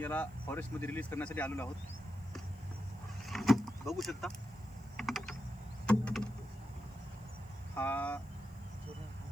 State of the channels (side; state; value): left; noise; hiss, 29 dB below the sound